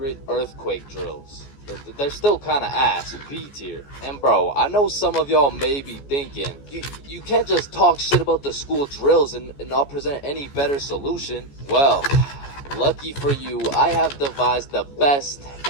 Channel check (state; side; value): late; right; 14 ms